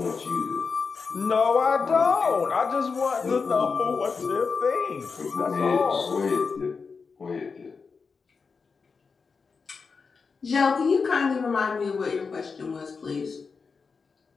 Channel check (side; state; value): right; quieter; 5.0 dB